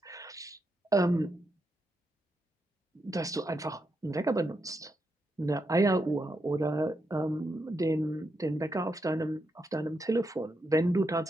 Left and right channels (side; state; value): both; normal; correlation 0.83